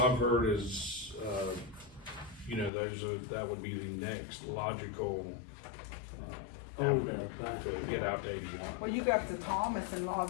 heard is, you know, that would be the next logical, avenue to get out to 81. Well, you go up to Thomas and all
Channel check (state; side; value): drops out; right; at 2.7 s